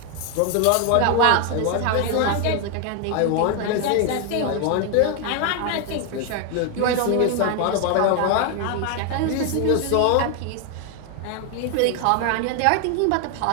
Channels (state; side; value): different; both; correlation 0.01